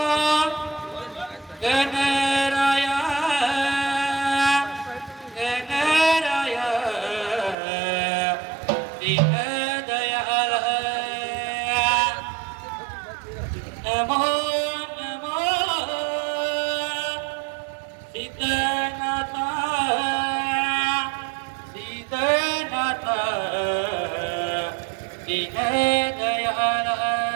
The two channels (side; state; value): left; drops out; at 7.6 s